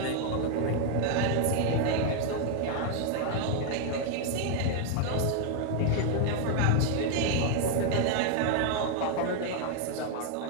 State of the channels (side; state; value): both; different; correlation 0.00